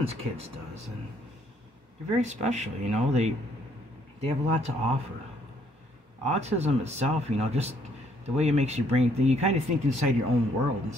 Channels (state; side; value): normal; both; correlation 0.67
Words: kids does, and they're very special. You know, they have a lot to offer. Autism itself, you know, just the way it makes your brain think, you kind of think inside your own world in